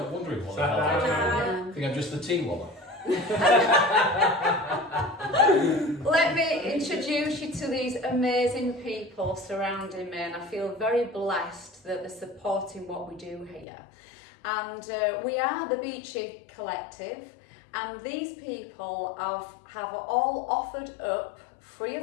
not wondering what Sat I think I'm just the tea woman. Let me introduce you to these amazing people surrounding me, and I feel very blessed that they're supporting what we do here. And we are the Beachy Collective, and these people have all offered up free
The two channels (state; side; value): drops out; right; at 13.7 s